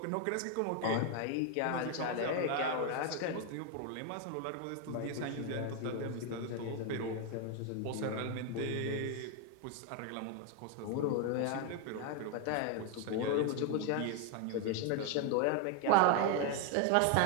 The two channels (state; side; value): different; both; correlation 0.01